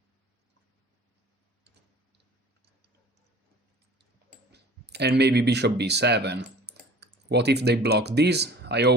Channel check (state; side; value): normal; both; correlation 0.46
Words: And maybe bishop b7. What if they block this? I